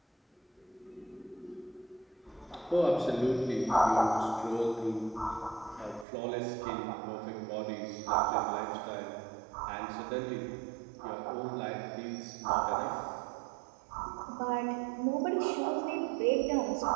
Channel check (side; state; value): left; drops out; at 6.1 s